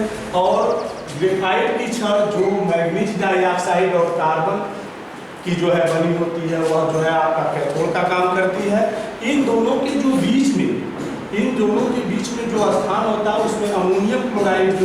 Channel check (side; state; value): both; identical; correlation 1.00